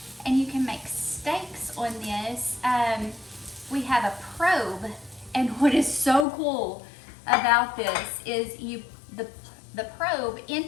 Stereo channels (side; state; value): right; drops out; at 6.2 s